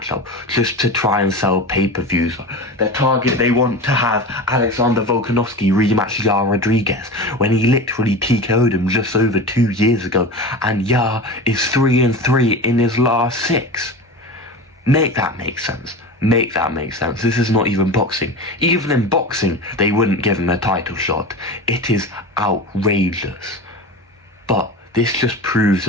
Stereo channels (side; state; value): both; normal; correlation 0.29